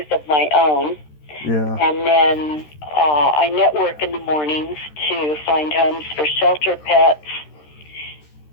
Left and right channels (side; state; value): right; late; 13 ms